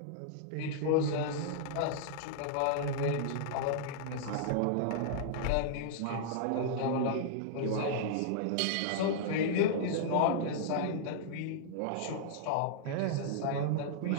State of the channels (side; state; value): both; different; correlation -0.01